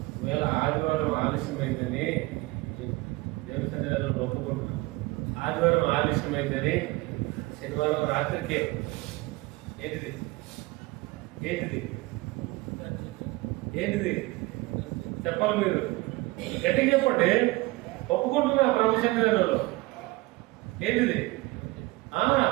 ఒకవేళ ఆదివారం ఆలస్యమైందని దేవుని సన్నిధానంలో ఒప్పుకుంటున్నాను, ఆదివారం ఆలస్యమైందని శనివారం రాత్రికే ఏంటిది ఏంటిది ఏంటిది చెప్పాలి, మీరు గట్టిగా చెప్పండి. ఒప్పుకుంటున్నా ప్రభు సన్నిధానంలో ఏంటిది?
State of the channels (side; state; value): left; quieter; 21.8 dB